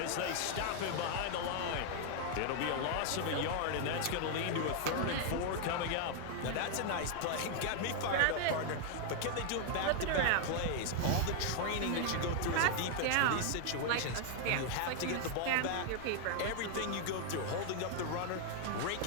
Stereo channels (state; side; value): different; both; correlation 0.00